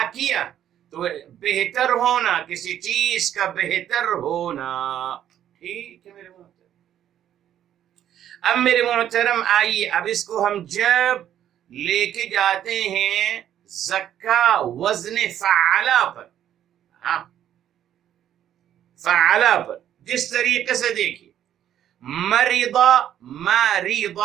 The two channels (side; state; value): left; quieter; 10.7 dB